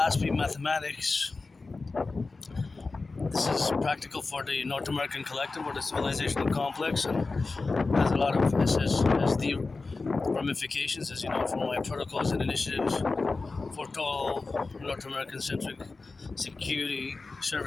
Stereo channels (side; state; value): right; quieter; 3.8 dB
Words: mathematics. This is practical for the North American collective or the civilizational complex, and has a lot of SSD ramifications, as you know, from my protocols and initiatives for total North American centric security,